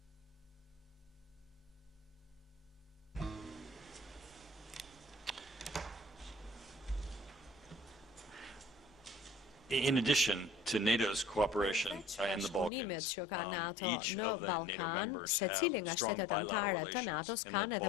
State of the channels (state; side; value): drops out; right; at 12.7 s